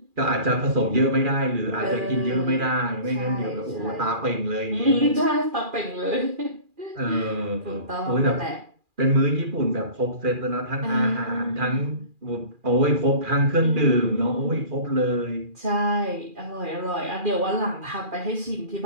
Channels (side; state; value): left; late; 2.4 ms